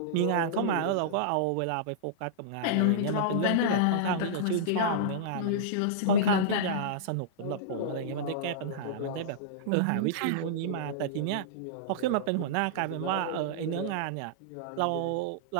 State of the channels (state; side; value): different; both; correlation -0.03